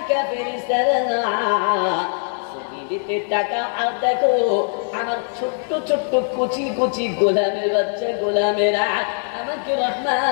ফেরেশতারা দিতে টাকা, আর দেখো আমার ছোট্ট ছোট্ট কচি কচি গোলামের বাচ্চা গোলামেরা আমাকে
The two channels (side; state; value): right; silent; digital silence